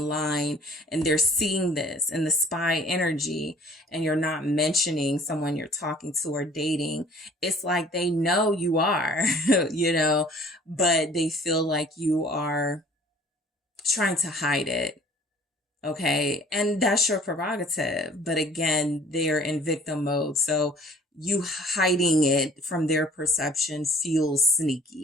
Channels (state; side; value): normal; both; correlation 0.52